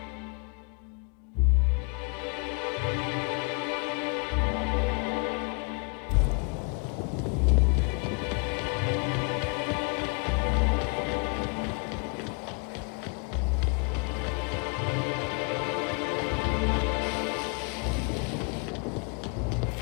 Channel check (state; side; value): quieter; right; 33.4 dB